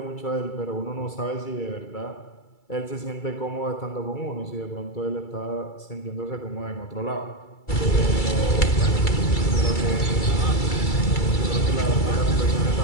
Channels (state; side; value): late; right; 2.3 ms